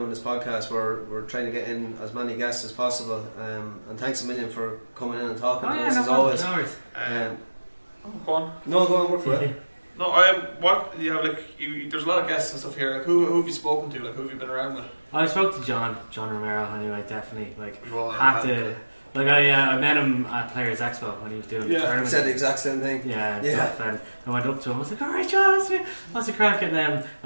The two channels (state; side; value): inverted; both; correlation -1.00